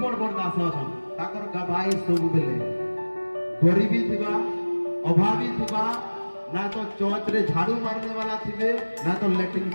बड़ दास अछन ताकर गवाही सब बेले गरीबी थिबा अभावी थिबा ना तो चौच रे झाड़ू मारने वाला थिबे ना तो लैट्रिन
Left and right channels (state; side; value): inverted; both; correlation -1.00